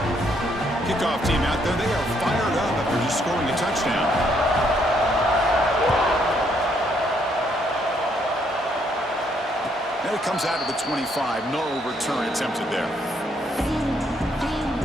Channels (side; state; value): both; normal; correlation 0.71